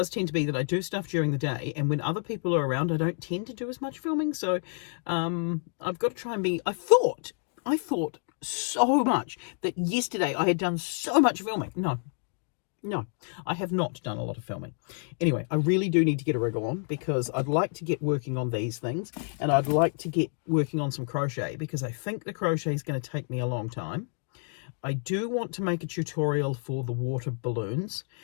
tend to be that I do stuff during the day, and when other people are around, I don't tend to do as much filming. So I've got to try and be... I thought so much that yesterday I had done so much filming. No, I have not done a lot of filming. Anyway, I really do need to get a rig on, because I'd like to get working on these things, and I'd like to get working on some crochet, because I think the crochet is going to take me a long time. I do want to make a tutorial for the water balloons.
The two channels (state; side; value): silent; right; 55 dB below the other